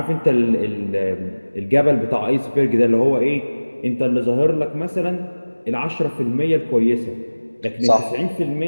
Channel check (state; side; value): inverted; both; correlation -1.00